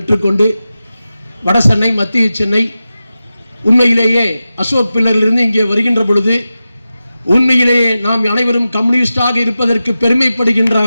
வட சென்னை மத்திய சென்னை உண்மையிலேயே அசோக் பில்லரிலிருந்து இங்கே வருகின்ற பொழுது உண்மையிலேயே நாம் அனைவரும் கம்யூனிஸ்டாக இருப்பதற்கு பெருமைப்படுகின்ற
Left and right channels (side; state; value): both; inverted; correlation -0.93